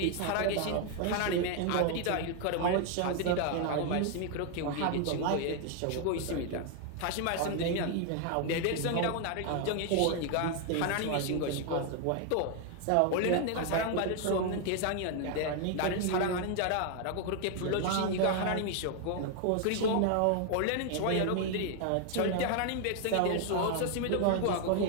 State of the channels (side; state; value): both; different; correlation 0.00